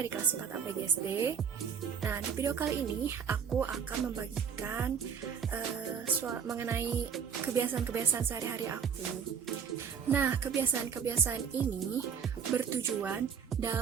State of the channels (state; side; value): quieter; left; 7.1 dB